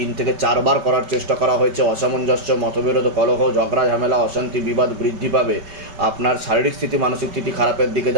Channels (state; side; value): late; left; 5.2 ms